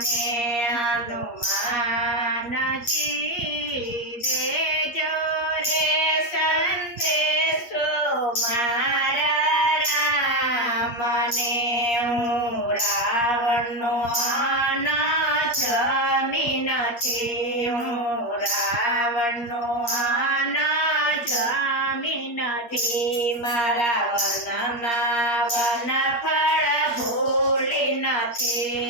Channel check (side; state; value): right; late; 8.5 ms